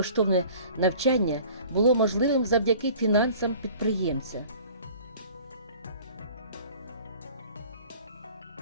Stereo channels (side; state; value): both; inverted; correlation -0.47